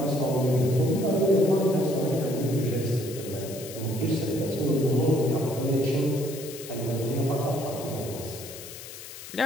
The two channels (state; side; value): noise; left; hiss, 13 dB below the sound